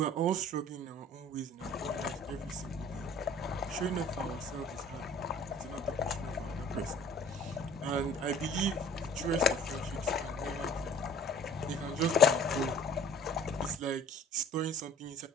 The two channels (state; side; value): normal; both; correlation 0.49